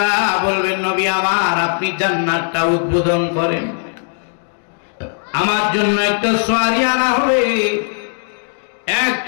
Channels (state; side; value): silent; right; digital silence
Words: বলবেন নবী আমার আপনি জান্নাতটা উদ্বোধন করেন, আমার জন্য একটা সওয়ারি আনা হবে,